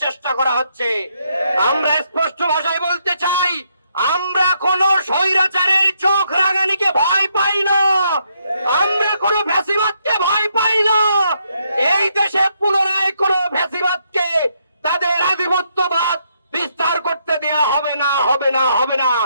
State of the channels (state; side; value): inverted; both; correlation -0.76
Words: চেষ্টা করা হচ্ছে। আমরা স্পষ্ট ভাষায় বলতে চাই, আমরা কোন স্বৈরাচারের চোখ রাঙানিকে ভয় পাই না, আমরা কোন ফ্যাসিবাদকে ভয় পাই না। এই দেশে পুনরায় কোন ফ্যাসিবাদকে তাদের আধিপত্যবাদ বিস্তার করতে দেয়া হবে না, হবে না, হবে না।